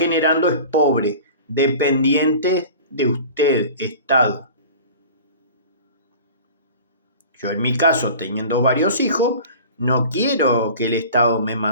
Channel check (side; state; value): both; inverted; correlation -0.40